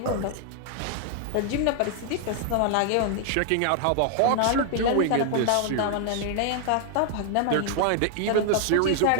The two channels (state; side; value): different; both; correlation 0.00